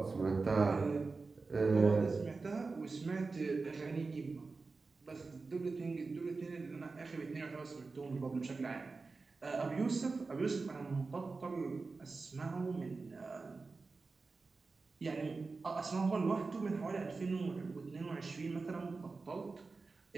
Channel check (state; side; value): quieter; left; 4.0 dB